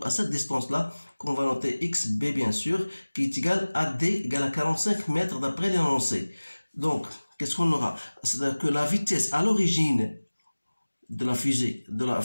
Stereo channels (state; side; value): inverted; both; correlation -1.00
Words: à cette distance-là, qu'on va noter XB bien sûr, qui est égale à D égale à 45 mètres d'après l'énoncé. Donc, qu'est-ce qu'on aura? C'est-à-dire que la vitesse à l'origine de la fusée,